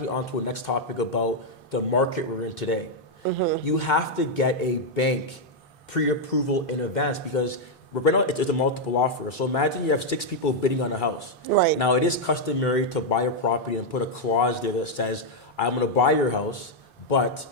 on to a next topic about the market we're in today. Mm-hmm. You have to get a bank pre-approval in advance because right now it's a multiple offer. So imagine you have 6 people bidding on a house. Right. Now it is customary to buy a property and put a clause there that says, I'm going to buy your house, but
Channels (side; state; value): both; normal; correlation -0.02